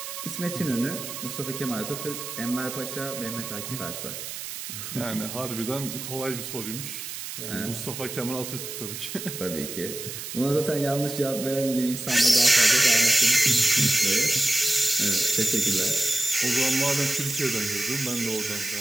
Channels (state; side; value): noise; right; hiss, 8 dB below the sound